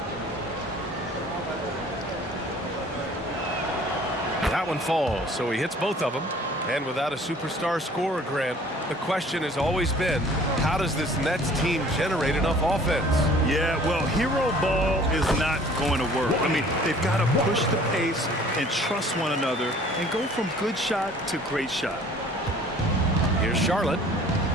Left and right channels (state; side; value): normal; both; correlation 0.52